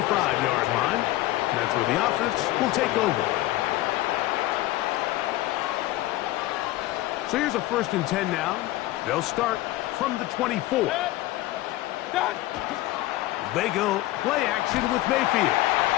line. And that's where the offense will take over. So here's a 1st and 10 now. They'll start from the 24. They go play action with Mayfield.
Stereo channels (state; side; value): quieter; right; 16.7 dB